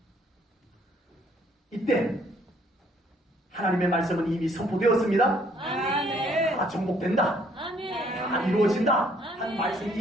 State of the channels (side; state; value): both; normal; correlation 0.64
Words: 이때 하나님의 말씀은 이미 선포되었습니다. 아멘. 다 정복된다. 아멘. 다 이루어진다. 한 아멘. 말씀이